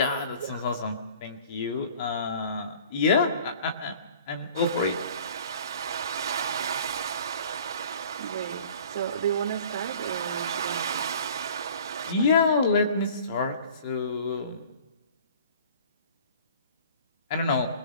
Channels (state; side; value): inverted; both; correlation -0.48